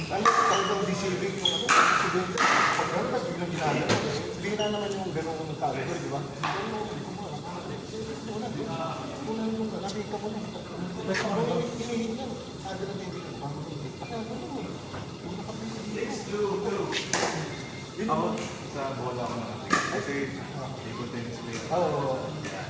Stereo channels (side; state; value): both; identical; correlation 1.00